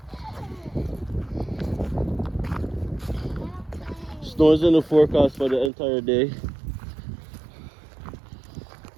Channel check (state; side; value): drops out; left; at 5.7 s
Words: time. Snow is in the forecast for the entire day.